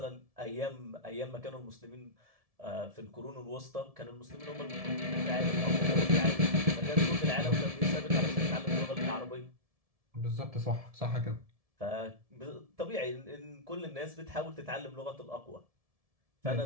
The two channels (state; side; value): late; left; 1.7 ms